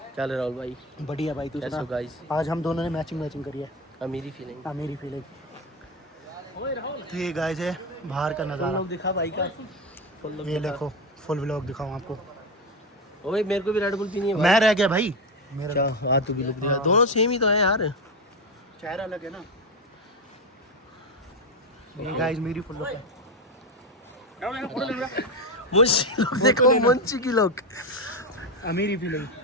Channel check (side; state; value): both; normal; correlation 0.14